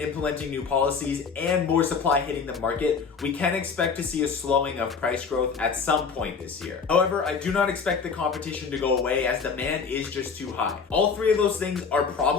new policies, and more supply hitting the market, we can expect to see a slowing of price growth at some point this year. However, I do not expect the competition to go away as demand is just too high. All 3 of those things are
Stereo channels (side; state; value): right; quieter; 5.5 dB